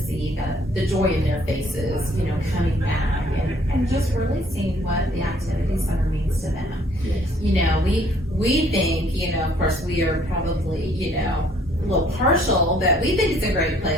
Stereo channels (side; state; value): both; normal; correlation 0.61